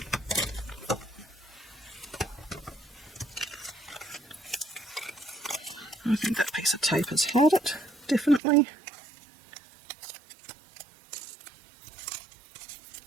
I think that piece of tape has held it, definitely.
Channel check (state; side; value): drops out; left; at 8.4 s